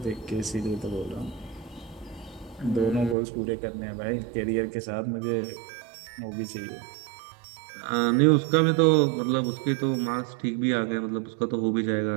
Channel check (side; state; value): left; drops out; at 3.2 s